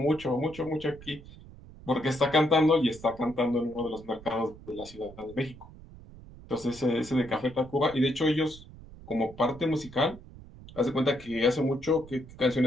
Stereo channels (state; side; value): noise; right; rumble, 18 dB below the sound